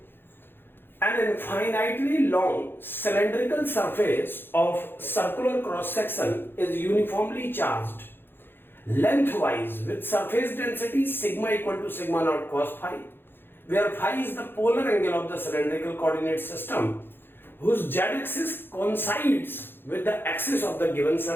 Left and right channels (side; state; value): right; late; 0.10 ms